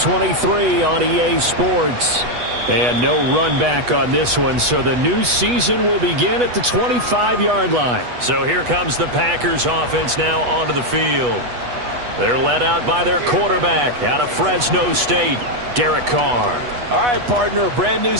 on EA Sports. And no run back on this one, so the new season will begin at the 25-yard line. So here comes the Packers offense now onto the field. They're led out by their quarterback out of Fresno State, Derek Carr. All right, partner, a brand new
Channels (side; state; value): left; late; 8.2 ms